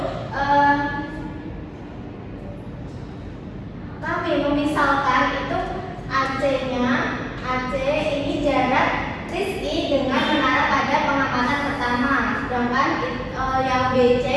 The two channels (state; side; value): identical; both; correlation 1.00